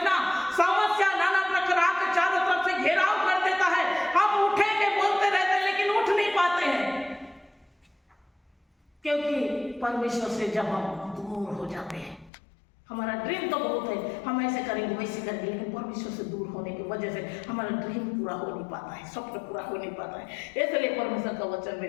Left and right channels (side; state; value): right; drops out; at 12.3 s